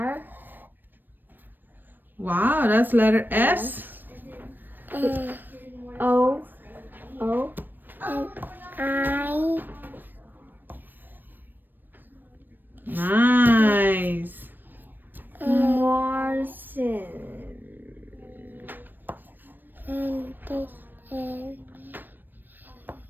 Wow, that's letter S. O. O. I. Nice. Morrison. And this.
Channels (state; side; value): late; left; 0.092 ms